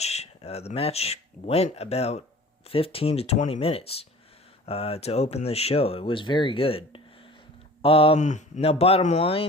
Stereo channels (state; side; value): normal; both; correlation 0.43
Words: The match went about 15 to 20 minutes to open the show. It was very good. Now, bottom